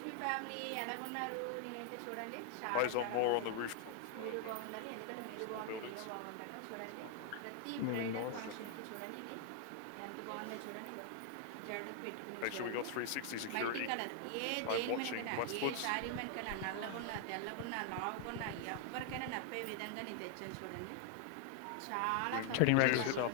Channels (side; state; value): both; different; correlation 0.00